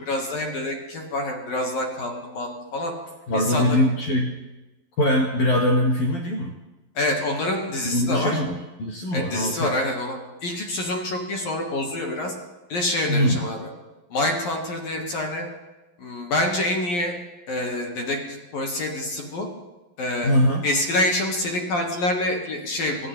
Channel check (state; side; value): late; right; 11 ms